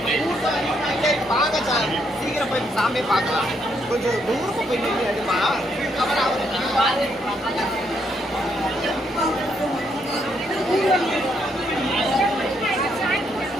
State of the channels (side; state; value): both; normal; correlation 0.75